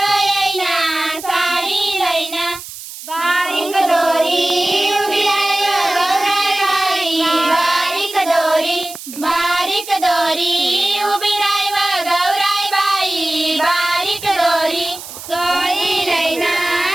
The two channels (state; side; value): noise; right; hiss, 13 dB below the sound